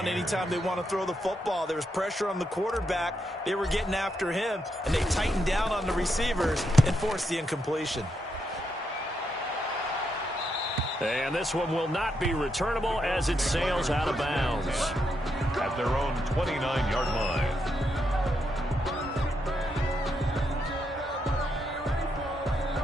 anytime they want to throw the football. There was pressure on the quarterback. They were getting after him, and they tightened down on the receivers and forced the incompletion. And this one will not be returnable as it sails out of bounds. At their own 29-yard line.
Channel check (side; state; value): both; normal; correlation 0.80